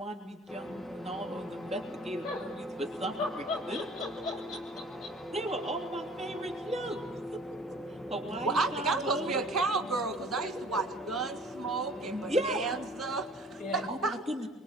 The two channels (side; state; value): both; normal; correlation 0.50